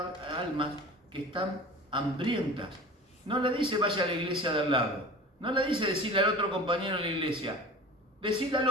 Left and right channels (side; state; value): both; normal; correlation 0.38